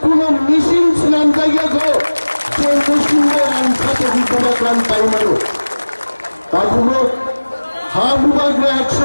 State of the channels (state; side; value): inverted; both; correlation -1.00